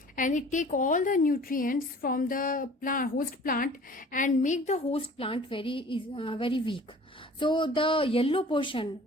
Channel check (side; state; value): both; normal; correlation 0.47